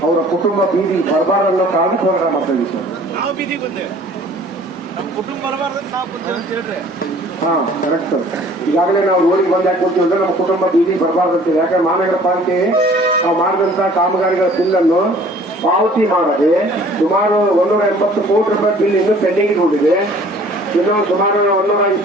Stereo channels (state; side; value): normal; both; correlation 0.52